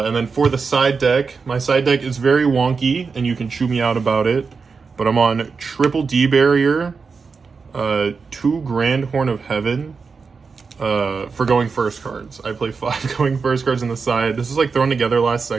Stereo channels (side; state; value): left; quieter; 5.0 dB